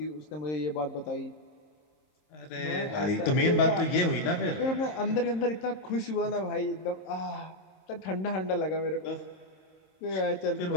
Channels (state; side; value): late; right; 26 ms